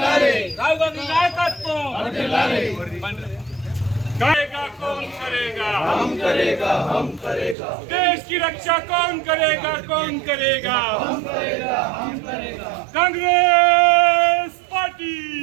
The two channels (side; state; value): left; drops out; at 7.6 s